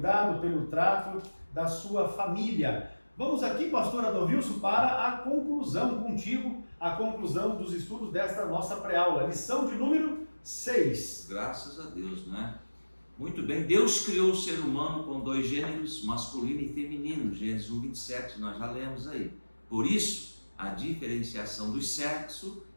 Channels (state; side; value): inverted; both; correlation -1.00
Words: pelo trato da sua família. Vamos aqui, pastor Adalvilson, para a conclusão contigo, a conclusão dos estudos desta nossa pré-aula. Lição de número 6. Graças a Deus, né? Muito bem, Deus criou o ser humano com 2 gêneros, masculino e feminino, Gênesis 1:27, nós já lemos aí. Por isso, a diferenciação do sexo